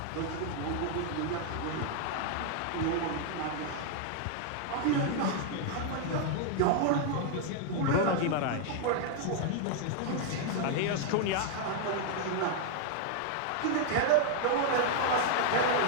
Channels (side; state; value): both; different; correlation 0.00